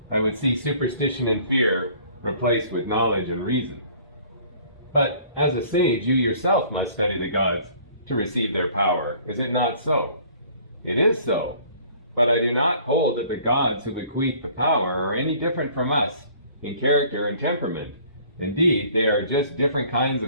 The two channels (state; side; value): inverted; both; correlation -0.54